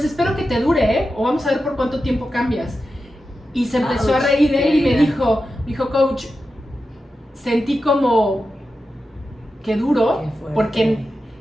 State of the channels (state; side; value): normal; both; correlation 0.91